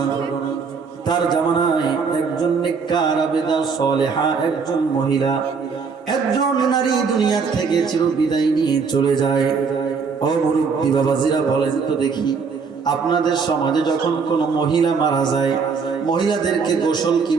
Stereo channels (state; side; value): quieter; left; 5.4 dB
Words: তার জামানায় একজন নেককার আবেদা সালেহা একজন মহিলা, একজন নারী দুনিয়ার থেকে চিরবিদায় নিয়ে চলে যায়। ও মুরব্বী বাবাজিরা বলেন তো দেখি, আপনাদের সমাজে যখন কোনো মহিলা মারা যায়, মহিলাদেরকে গোসল কি